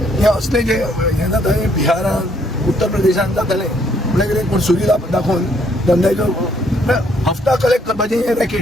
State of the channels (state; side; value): normal; both; correlation 0.68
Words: हें असलें जें हें जाता हें बिहारान उत्तर प्रदेशान जातालें म्हळ्यार कितें पूण सुरी दाखोवन धंद्याचो हफ्ता कलेक्ट करपाचें हें